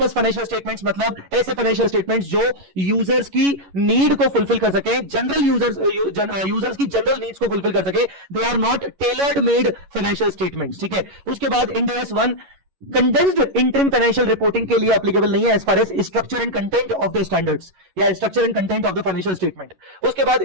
फाइनेंशियल स्टेटमेंट्स मतलब ऐसे फाइनेंशियल स्टेटमेंट्स जो यूजर्स की नीड को फुलफिल कर सके, जनरल यूजर्स की जनरल नीड्स को फुलफिल कर सके. They are not tailored made financial statements. ठीक है. उसके बाद Ind AS 1 condensed interim financial reporting के लिए एप्लीकेबल नहीं है as far as structure and content of the standards या structure and content of the financial statement. उसके बाद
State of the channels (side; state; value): left; late; 11 ms